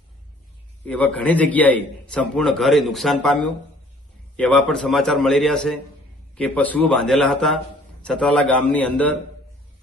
એવા ઘણી જગ્યાએ સંપૂર્ણ ઘર એ નુકસાન પામ્યું. એવા પણ સમાચાર મળી રહ્યા છે કે પશુઓ બાંધેલા હતા સતરાલા ગામની અંદર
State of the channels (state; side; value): normal; both; correlation 0.55